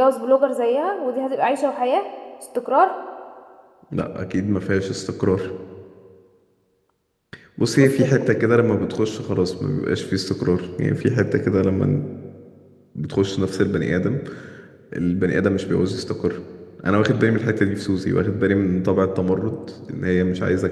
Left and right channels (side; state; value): both; identical; correlation 1.00